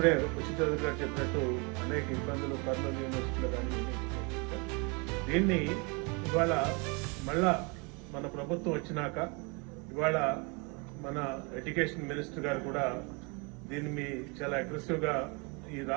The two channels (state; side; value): quieter; left; 31.2 dB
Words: ఉచిత గారు చెప్పినట్టు అనేక ఇబ్బందులు కర్నూలు యూనివర్సిటీలో కానీ దీన్ని ఇవాళ మళ్ళా మన ప్రభుత్వం వచ్చినాక ఇవాళ మన ఎడ్యుకేషన్ మినిస్టర్ గారు కూడా దీన్ని చాలా అగ్రెసివ్ గా ఈ